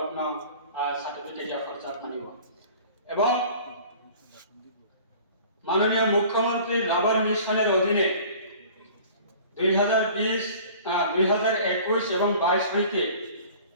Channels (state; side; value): inverted; both; correlation -0.46